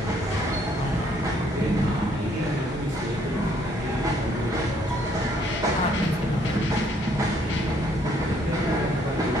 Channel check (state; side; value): normal; both; correlation 0.66